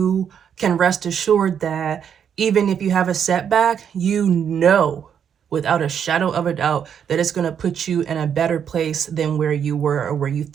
can rest assured that even if you have a setback, you know without a shadow of a doubt that it's going to put you in a better place than where you were or where you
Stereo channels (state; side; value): quieter; left; 8.1 dB